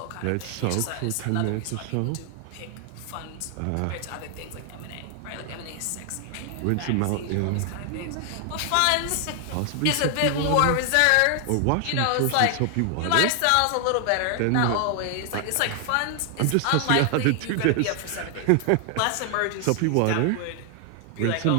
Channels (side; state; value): both; different; correlation 0.00